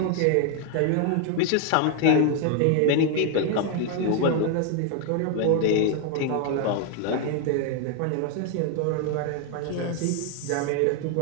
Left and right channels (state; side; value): different; both; correlation 0.00